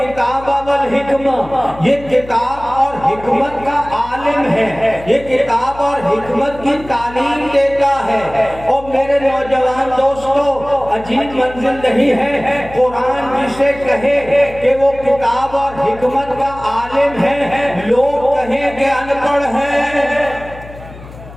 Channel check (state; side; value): noise; left; hum, 17 dB below the sound